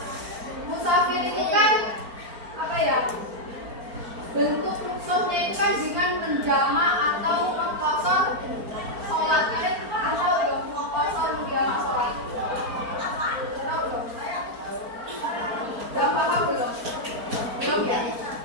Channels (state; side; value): late; left; 4.4 ms